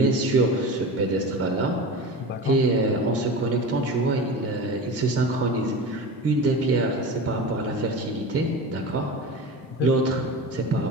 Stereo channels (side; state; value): both; normal; correlation 0.30